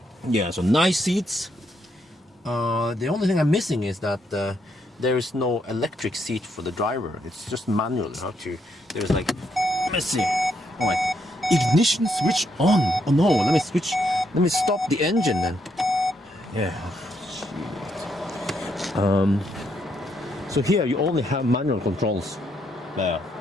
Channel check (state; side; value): normal; both; correlation 0.76